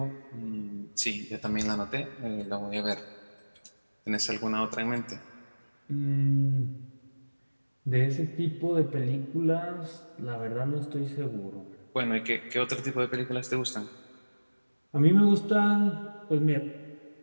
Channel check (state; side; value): inverted; both; correlation -1.00